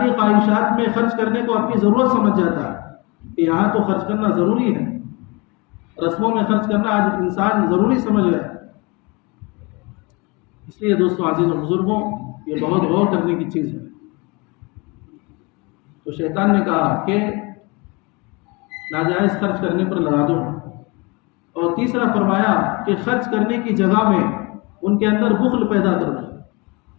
خواہشات میں خرچ کرنے کو اپنی ضرورت سمجھ جاتا ہے کہ یہاں تو خرچ کرنا ضروری ہے. رسموں میں خرچ کرنا آج انسان ضروری سمجھ گیا. اس لیے دوستوں عزیزوں بزرگوں، یہ بہت غور کرنے کی چیز ہے. تو شیطان نے کہا کہ ناجائز خرچ کرنے پر لگا دوں. اور تیسرا فرمایا کہ خرچ کرنے کی جگہ میں ان کے اندر بخل پیدا کر دوں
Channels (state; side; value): quieter; right; 27.1 dB